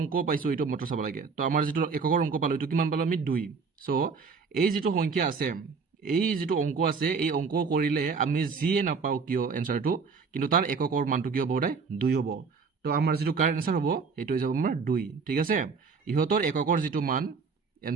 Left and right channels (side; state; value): left; quieter; 5.1 dB